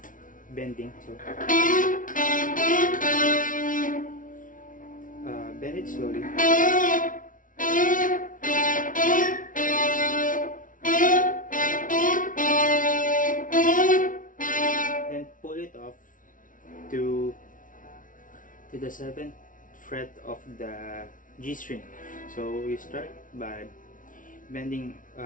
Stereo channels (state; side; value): late; right; 0.38 ms